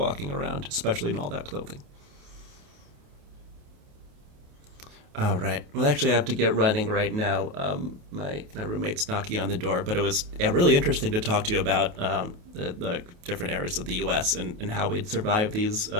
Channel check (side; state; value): left; late; 28 ms